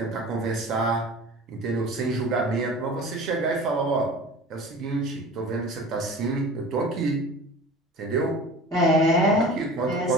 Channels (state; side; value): normal; both; correlation 0.39